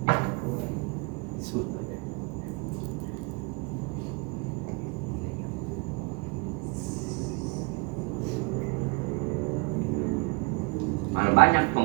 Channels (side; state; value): left; quieter; 28.7 dB